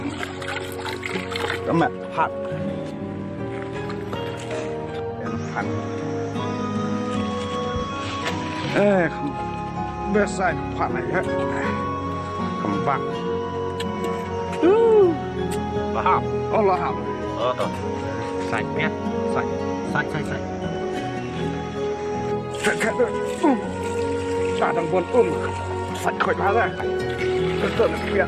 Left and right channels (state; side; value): identical; both; correlation 1.00